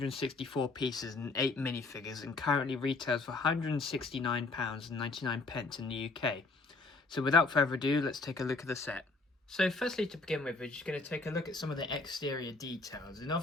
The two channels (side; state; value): right; quieter; 3.6 dB